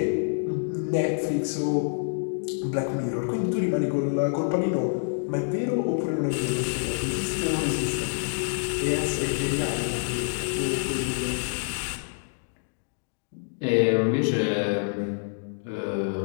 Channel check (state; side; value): silent; right; digital silence